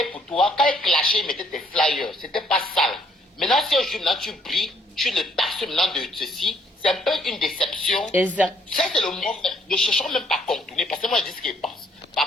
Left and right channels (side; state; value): both; normal; correlation 0.65